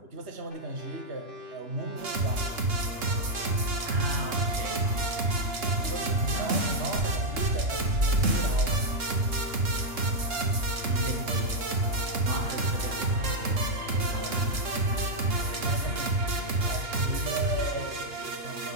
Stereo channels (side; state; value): left; late; 3.6 ms